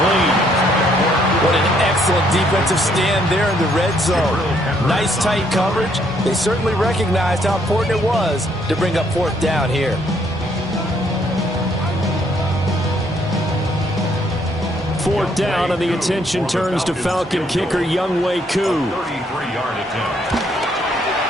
What an excellent defensive stand there in the red zone. Nice tight coverage. They certainly recognized how important it was to bring up 4th down here. 4th down, and the attention turns to Falcon kicker Younghoe Koo.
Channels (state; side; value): normal; both; correlation 0.69